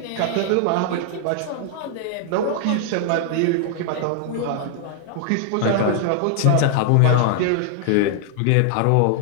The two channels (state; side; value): different; both; correlation 0.00